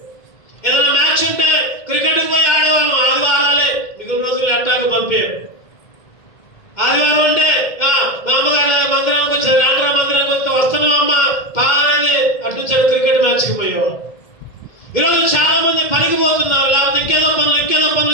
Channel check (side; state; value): right; late; 2.1 ms